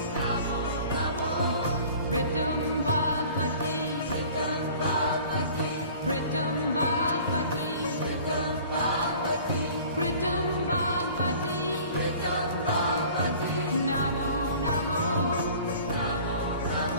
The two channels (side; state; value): both; inverted; correlation -0.47